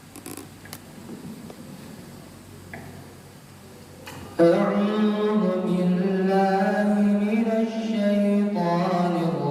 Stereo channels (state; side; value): identical; both; correlation 1.00